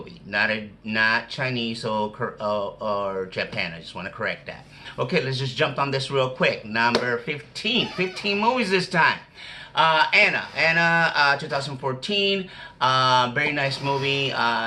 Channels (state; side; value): identical; both; correlation 1.00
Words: not Chinese or Japan. I just want to correct that. Okay, let's just jump on this real quick. Number 15. 15 movies this time. Anna, 2014, very nice movie.